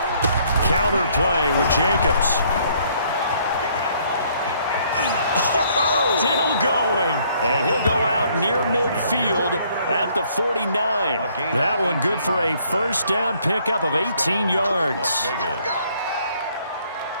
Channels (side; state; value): both; inverted; correlation -0.64